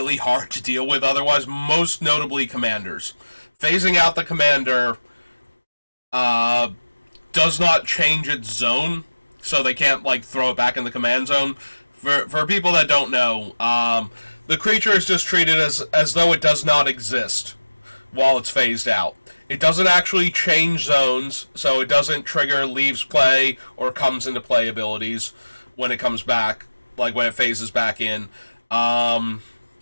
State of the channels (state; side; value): inverted; both; correlation -1.00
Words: hard to deal with otherwise, most notably commanders. Phasing out the commander does not change its zone, so they can't throw it back in the command zone. For people that don't know, the creature is just treated as though it does not exist while it's phased out. It doesn't actually change zones, so it doesn't trigger leaves play or comes into play abilities when it comes back, when it phases back in.